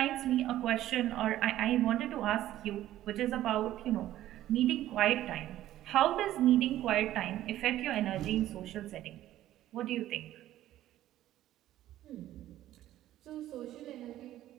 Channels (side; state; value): left; quieter; 13.6 dB